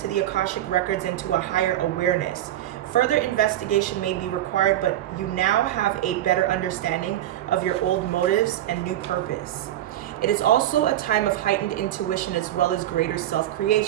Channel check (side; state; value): left; quieter; 13.0 dB